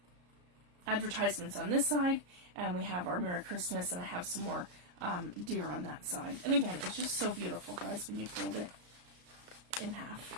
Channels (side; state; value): left; late; 33 ms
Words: advertisements on this side, and we have our Merry Christmas, and I have some more deer on that side. And again, it's just so beautiful, guys, when you fold it in